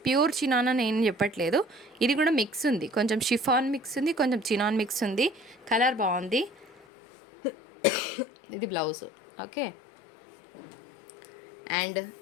ప్యూర్ చినాన్ అని ఏం చెప్పట్లేదు. ఇది కూడా మిక్స్ ఉంది, కొంచెం షిఫాన్ మిక్స్ ఉంది, కొంచెం చినాన్ మిక్స్ ఉంది. కలర్ బాగుంది. ఇది బ్లౌజ్, ఓకే. అండ్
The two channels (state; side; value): drops out; right; at 6.9 s